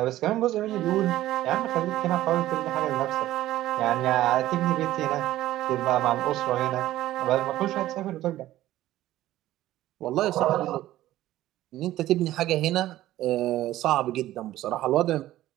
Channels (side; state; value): left; quieter; 14.7 dB